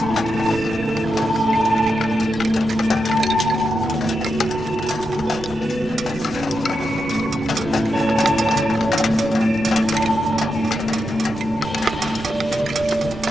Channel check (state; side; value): noise; right; rumble, 15 dB below the sound